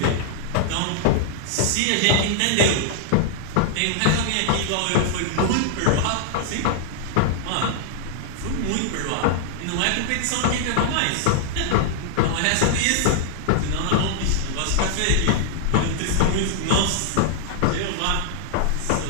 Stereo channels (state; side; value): different; both; correlation -0.01